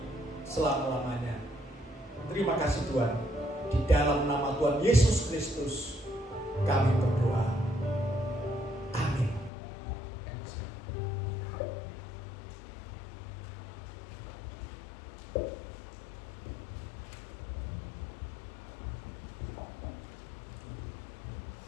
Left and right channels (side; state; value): right; drops out; at 9.5 s